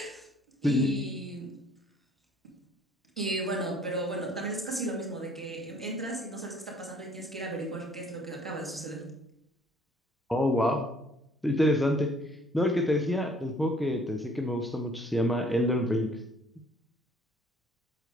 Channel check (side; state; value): both; normal; correlation 0.58